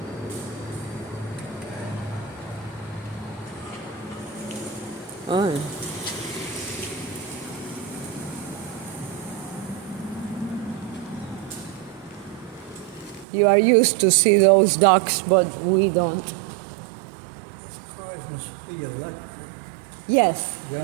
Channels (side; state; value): left; drops out; at 13.2 s